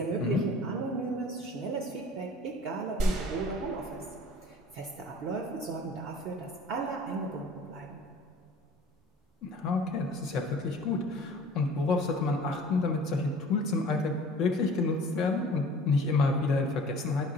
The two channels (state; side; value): normal; both; correlation 0.47